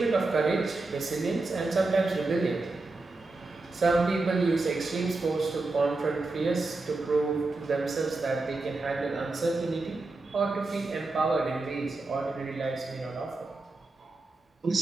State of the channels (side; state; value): left; quieter; 3.3 dB